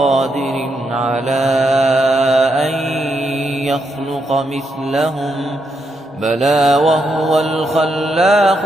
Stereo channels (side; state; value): both; normal; correlation 0.80